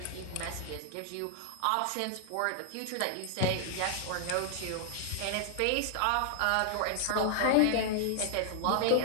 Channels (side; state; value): both; different; correlation -0.01